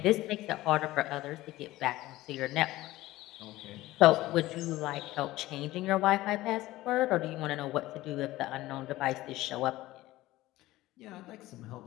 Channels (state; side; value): quieter; right; 17.1 dB